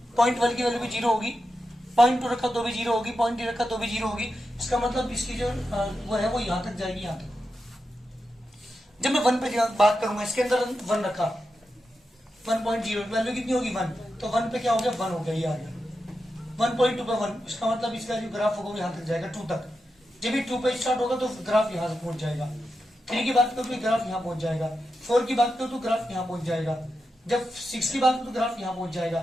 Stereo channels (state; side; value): normal; both; correlation 0.88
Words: 0.1 की वैल्यू भी 0 होगी, 0.2 रखा तो भी 0 होगी, 0.3 रखा तो भी 0 होगी। इसका मतलब इसकी जो वो है वो यहां तक जाएगी, यहां तक। जब मैं 1 पे बात करूंगा, इसके अंदर 1 रखा, 1.0 वैल्यू कितनी होगी 1, तो 1 पे क्या हो गया 1 हो गया, ये आ गया। 1.2 पे 1, इसका मतलब इसका जो ग्राफ होगा वो यहां तक जाएगा 2 तक। जब भी 2 पे स्टार्ट होगा तो ग्राफ यहां से पहुंच जाएगा। 3 की बात करो तो ग्राफ यहां पहुंच जाएगा, 4 की बात करो तो ग्राफ यहां पहुंच जाएगा, जब 6 की बात करो तो ग्राफ यहां पहुंच